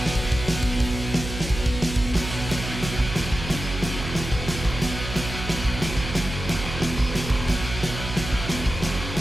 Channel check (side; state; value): right; noise; hum, 7 dB below the sound